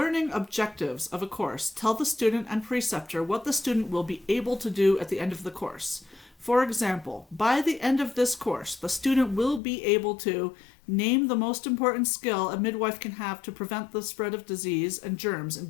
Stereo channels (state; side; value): drops out; right; at 9.6 s